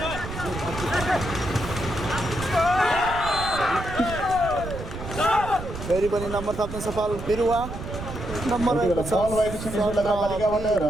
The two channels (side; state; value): right; noise; rumble, 9 dB below the sound